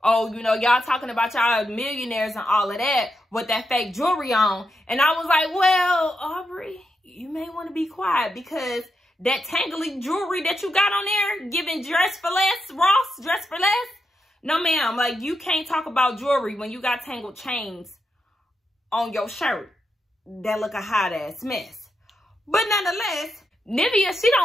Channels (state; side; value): normal; both; correlation 0.85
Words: oh, you know, y'all talking about y'all millionaires and all of that with that fake jewelry on. And I was like, well, Aubrey, you may want to be quiet because that tangly jewelry that you got on there, giving dress for less, Ross, dress for less. No, ma'am, like, you can't talk about jewelry when you got tangled chains on your shirt that look a hot ass mess. But nonetheless, Nivea, she